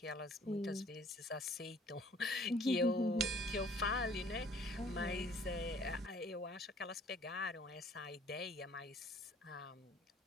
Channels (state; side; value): normal; both; correlation 0.55